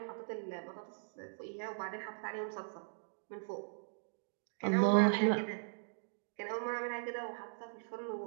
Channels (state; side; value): silent; left; digital silence